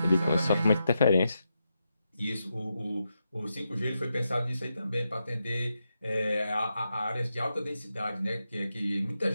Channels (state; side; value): inverted; both; correlation -0.86